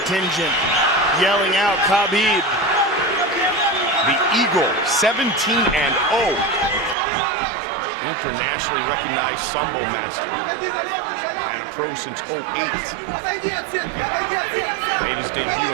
yelling out Khabib. The Eagle, 17-0. Internationally recognized Sambo master. And a pro since 08. Made his debut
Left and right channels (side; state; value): left; drops out; at 7.0 s